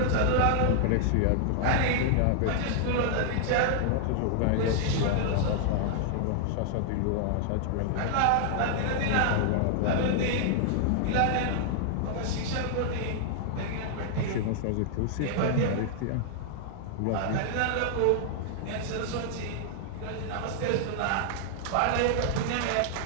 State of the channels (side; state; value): both; different; correlation -0.01